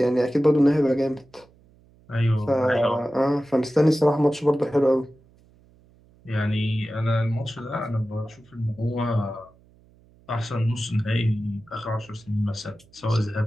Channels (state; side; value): noise; right; hum, 29 dB below the sound